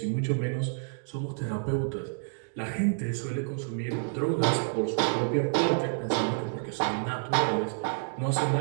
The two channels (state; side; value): silent; left; digital silence